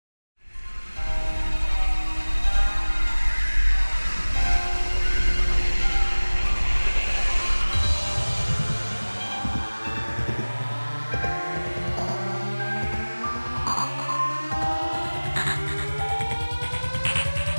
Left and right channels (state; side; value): inverted; both; correlation -1.00